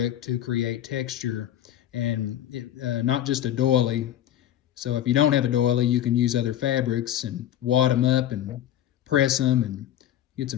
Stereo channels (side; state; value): right; quieter; 11.6 dB